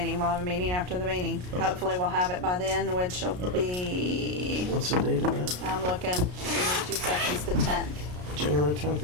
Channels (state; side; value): late; left; 33 ms